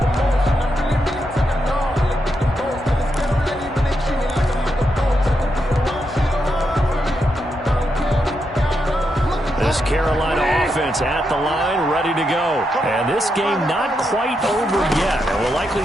Carolina offense at the line, ready to go. And this game not quite over yet. And we'll likely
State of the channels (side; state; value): both; normal; correlation 0.83